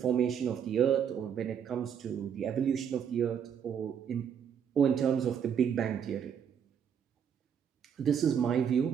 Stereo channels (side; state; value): left; quieter; 8.0 dB